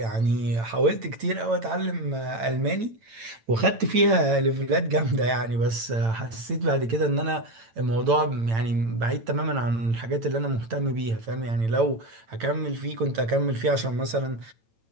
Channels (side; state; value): left; late; 8.9 ms